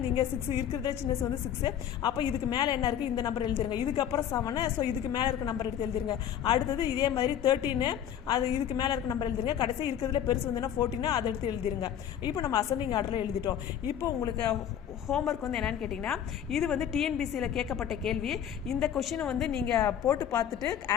நீங்கள் 6 இருக்கிறதே சின்னசு வந்து 6. அப்போ இதுக்கு மேலே என்ன இருக்குது இந்த நம்பர் எழுதிருங்க. இதுக்கப்புறம் 7. ஸோ இதுக்கு மேலே இருக்க நம்பர் எடுத்து எழுதிருங்க. அடுத்தது இதே மாதிரி 13 அது இதுக்கு மேலே இருக்க நம்பர் எழுதிருங்க. கடைசி இருக்கிறதுல பெருசு வந்துன்னா 14 அதை எடுத்து எழுதிருங்க. இப்போ நம்ம அசெண்டிங் ஆர்டரில் எழுதிட்டோம். இப்போ உங்களுக்கு ஹோம்ஒர்க் வந்து என்னன்னு கேட்டிங்கன்னா இது வந்து டிஎன்பிசியில் கேட்கப்பட்ட கேள்வி. இந்த கொஷினை வந்து நீங்கள் போட்டு பார்த்துட்டு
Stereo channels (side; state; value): right; quieter; 9.8 dB